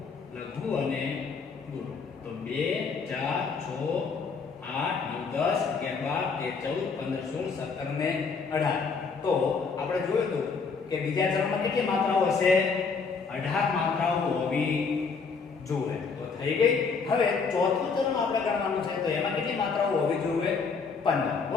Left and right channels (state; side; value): quieter; right; 5.1 dB